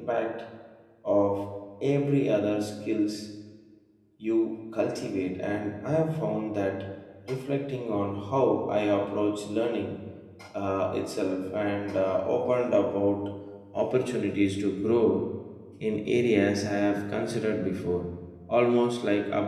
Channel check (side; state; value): both; identical; correlation 1.00